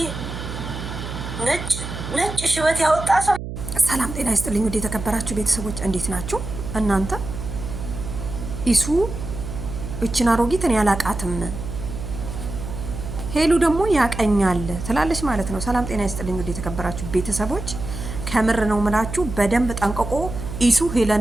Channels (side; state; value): right; noise; hum, 8 dB below the sound